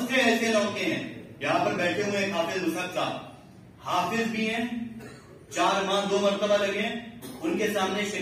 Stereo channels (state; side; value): identical; both; correlation 1.00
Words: سے ایسے لڑکے ہیں یہاں پر بیٹھے ہوئے ہیں. حافظ مصعب صاحب حافظ بھی ہیں، 4 ماہ 2 مرتبہ لگے ہیں. ان کے سامنے